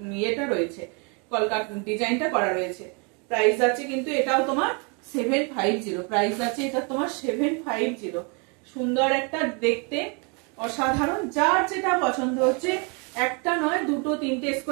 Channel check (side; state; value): left; quieter; 34.4 dB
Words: ইয়েটা রয়েছে, কলকা ডিজাইনটা করা রয়েছে। প্রাইস যাচ্ছে কিন্তু এটাও তোমার 750, প্রাইস যাচ্ছে এটা তোমার 750। সুন্দর একটা দেখতে, অসাধারণ। যার যেটা পছন্দ হচ্ছে, একটা নয় দুটো তিনটে